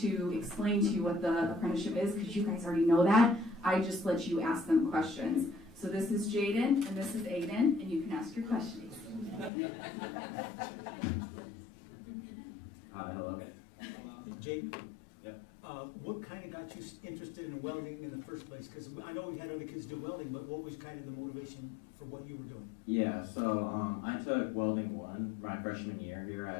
explain to you what the apprenticeship is, because you guys already know that, I just let you ask them questions. So this is Jaden, and this is Aiden, and you can ask your questions. Hi, hello. Jake? Yep. What kind of got you interested in welding in the first place? Because I know we had other kids do welding, but what was kind of the motivation for what you were doing? Yeah, so I took welding 1 my freshman year here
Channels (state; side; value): drops out; right; at 9.5 s